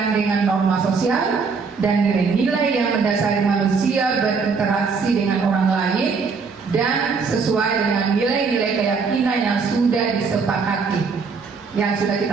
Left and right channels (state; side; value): quieter; left; 5.1 dB